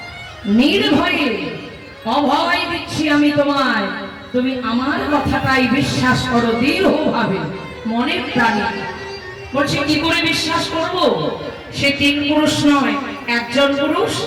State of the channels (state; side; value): identical; both; correlation 1.00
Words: নির্ভয়ে অভয় দিচ্ছি আমি তোমায়, তুমি আমার কথাটাই বিশ্বাস করো দৃঢ়ভাবে মনে প্রাণে। বলছে কি করে বিশ্বাস করব? সে তিন পুরুষ নয়, একজন পুরুষ।